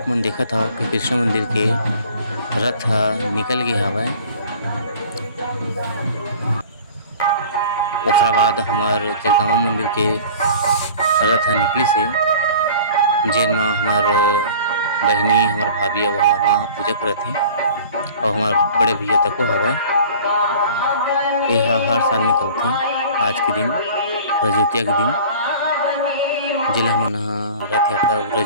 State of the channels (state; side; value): inverted; both; correlation -0.44